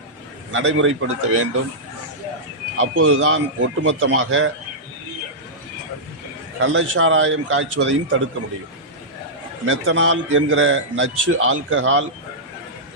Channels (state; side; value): normal; both; correlation -0.12